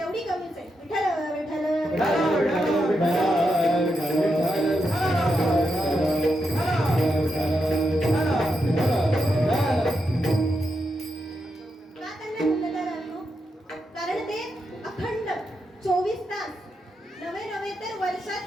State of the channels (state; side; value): normal; both; correlation 0.85